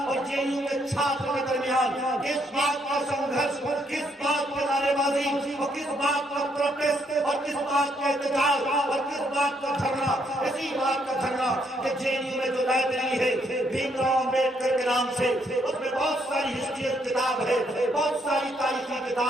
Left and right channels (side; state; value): both; normal; correlation 0.73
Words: اور جے این یو کے چھاتر کے درمیان. کس بات کا سنگھرش، کس بات کی نعرے بازی اور کس بات کا پروٹیسٹ اور کس بات کا احتجاج اور کس بات کا دھرنا؟ اسی بات کا دھرنا کہ جے این یو میں جو لائبریری ہے بھیم راؤ امبیڈکر کے نام سے، اس میں بہت ساری ہسٹری کتاب ہے، بہت ساری تاریخی